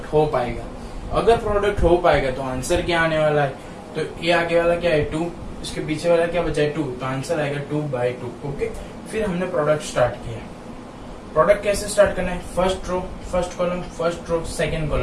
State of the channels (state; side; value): identical; both; correlation 1.00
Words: हो पाएगा। अगर प्रोडक्ट हो पाएगा तो आंसर क्या आने वाला है, तो ये आगे वाला क्या है 2, इसके पीछे वाला क्या बचा है 2, तो आंसर आएगा 2/2। ओके, फिर हमने प्रोडक्ट स्टार्ट किया। प्रोडक्ट कैसे स्टार्ट करना है, first row first column, first row second